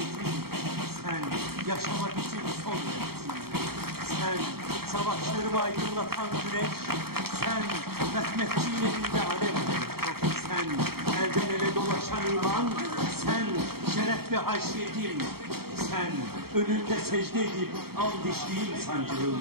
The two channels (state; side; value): late; left; 0.95 ms